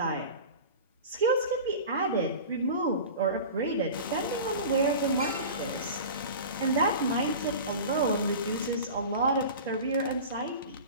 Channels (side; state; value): both; inverted; correlation -0.34